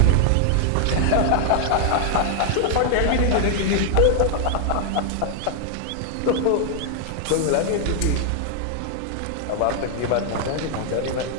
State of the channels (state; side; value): different; both; correlation 0.00